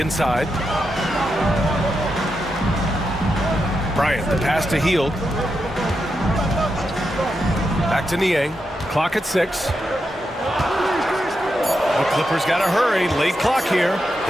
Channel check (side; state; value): both; normal; correlation 0.86